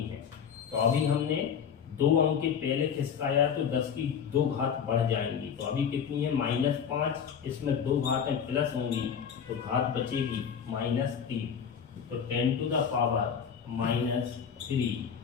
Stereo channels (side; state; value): right; quieter; 7.4 dB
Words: हैं, तो अभी हमने 2 अंक के पहले खिसकाया तो 10 की 2 घात बढ़ जाएंगी, तो अभी कितनी है -5, इसमें 2 घातें प्लस होंगी तो घात बचेगी -3, तो 10 टू द पावर -3